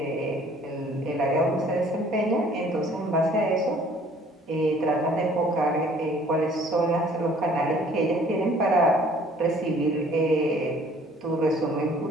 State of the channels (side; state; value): both; normal; correlation 0.56